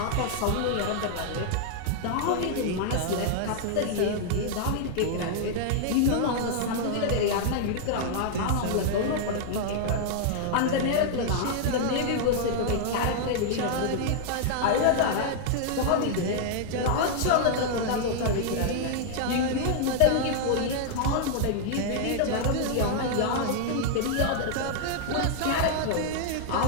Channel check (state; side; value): different; both; correlation -0.01